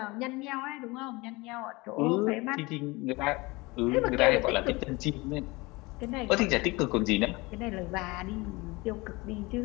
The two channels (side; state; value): right; quieter; 23.6 dB